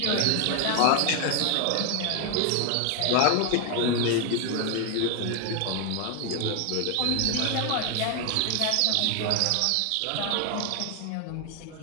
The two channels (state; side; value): different; both; correlation 0.01